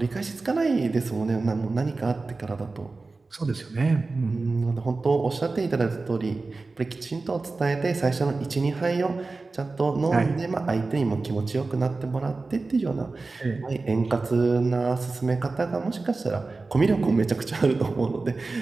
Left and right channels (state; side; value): quieter; left; 3.7 dB